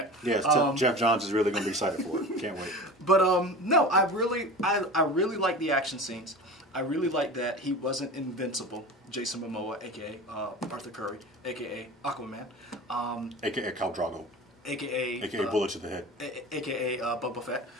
Yes, Jeff Johns is really going to be excited for it. Can't wait. But no, I really like the action scenes. I really like that he wasn't invincible. Jason Momoa, aka Arthur Curry, aka Aquaman, aka Khal Drogo, aka Bullet to the Head, aka Boba Fett.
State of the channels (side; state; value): both; normal; correlation 0.33